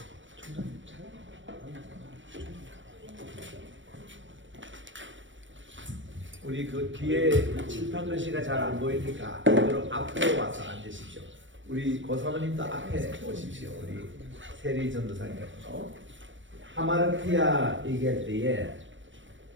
우리 그 뒤에 칠판 글씨가 잘 안 보이니까 그대로 앞으로 와서 앉으십시오. 우리 고사모님도 앞에 오십시오. 우리 세리 전도사님께서 하마르티아 얘기할 때에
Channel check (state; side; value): late; left; 0.56 ms